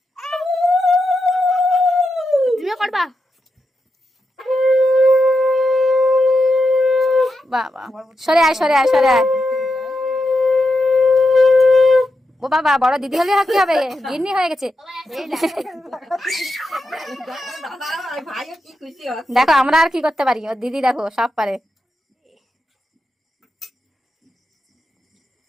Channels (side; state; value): both; normal; correlation 0.86